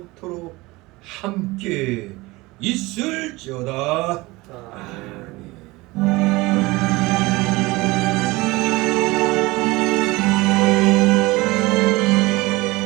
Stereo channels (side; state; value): left; quieter; 21.7 dB